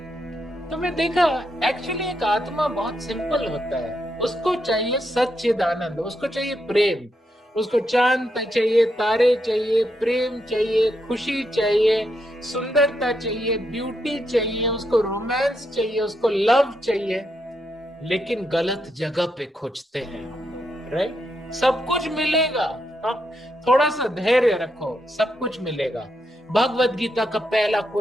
तो मैं देखा एक्चुअली एक आत्मा बहुत सिंपल होता है। उसको चाहिए सच्चिदानंद, उसको चाहिए प्रेम, उसको चांद चाहिए, तारे चाहिए, प्रेम चाहिए, खुशी चाहिए, सुंदरता चाहिए, ब्यूटी चाहिए, उसको रोमांस चाहिए, उसको लव चाहिए। लेकिन गलत जगह पे खोजते हैं, राइट? सब कुछ मिलेगा, थोड़ा सा धैर्य रखो, सब कुछ मिलेगा। भगवत गीता का पहला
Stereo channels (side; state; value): both; normal; correlation 0.81